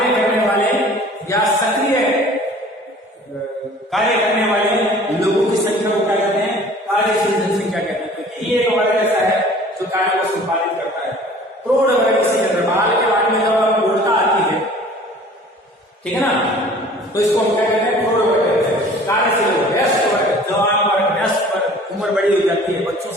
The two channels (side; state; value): both; normal; correlation 0.48